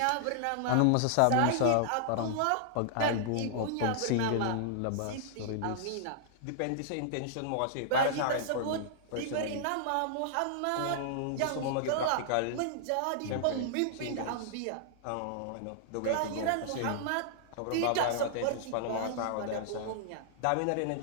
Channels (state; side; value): different; both; correlation -0.01